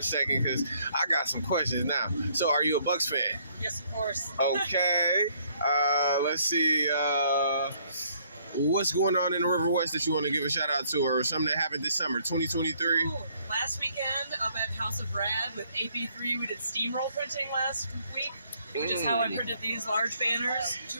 second because I got some questions now. So are you a Bucks fan? Yes, of course. Okay. Let's see. What's going on in the River West that you want to give a shout out to, or something that happened this summer, 2023? Ooh, last weekend up at House of Rad with AP3, we did steamroll printing last week, which is how I printed these large banners, 2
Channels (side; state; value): both; inverted; correlation -0.66